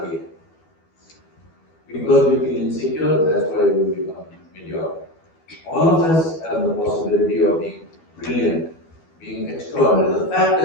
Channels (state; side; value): late; right; 12 ms